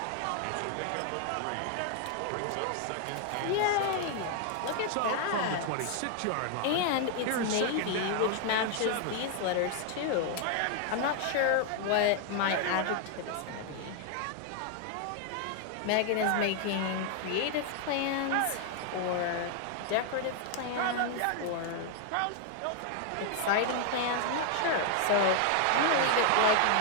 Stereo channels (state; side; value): different; both; correlation 0.00